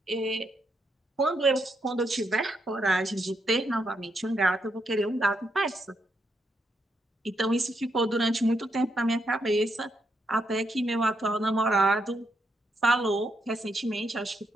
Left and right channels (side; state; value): both; normal; correlation 0.79